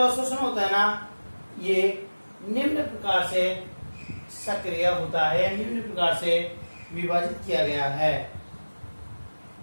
होता है ना, ये निम्न प्रकार से सक्रिय होता है, निम्न प्रकार से विभाजित किया गया है।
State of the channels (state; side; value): inverted; both; correlation -1.00